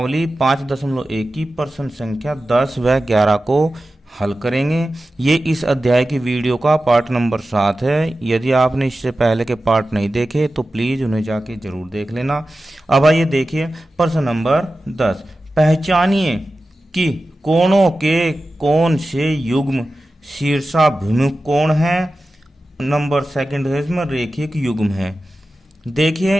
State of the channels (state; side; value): normal; both; correlation 0.94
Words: 5.1 की प्रश्न संख्या 10 व 11 को हल करेंगे। ये इस अध्याय की वीडियो का पार्ट नंबर 7 है। यदि आपने इससे पहले के पार्ट नहीं देखे तो प्लीज़ उन्हें जाके जरूर देख लेना। अब आइए देखिए प्रश्न नंबर 10। पहचानिए कि कोणों के कौन से युग्म शीर्षाभिमुख कोण हैं। नंबर सेकंड है इसमें रेखिक युग्म है।